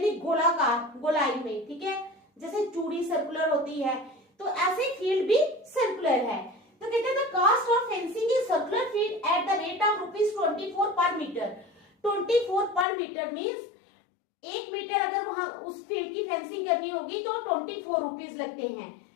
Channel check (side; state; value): right; drops out; at 12.9 s